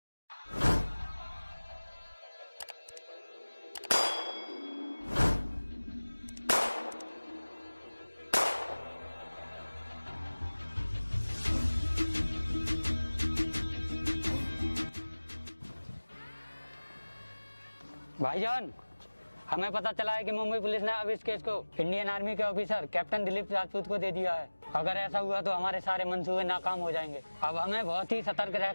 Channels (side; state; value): both; inverted; correlation -1.00